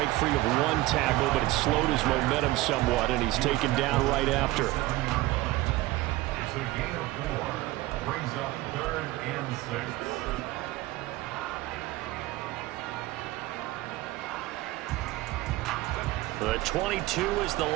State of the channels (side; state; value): left; quieter; 18.4 dB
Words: free of one tackle, but it slowed his momentum somewhat, and he's taken down right after. It's a gain of 4. Brings up 3rd and 6. The 22 is the